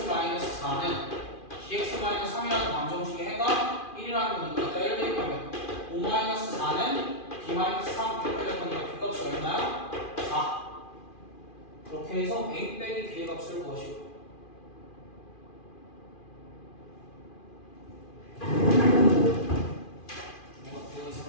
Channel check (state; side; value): late; right; 2.4 ms